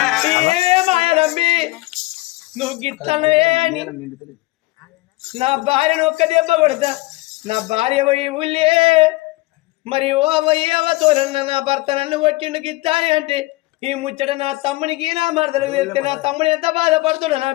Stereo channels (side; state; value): right; quieter; 20.8 dB